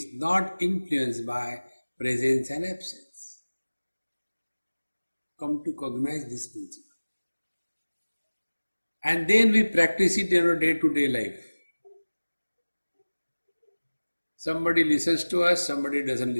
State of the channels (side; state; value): both; inverted; correlation -1.00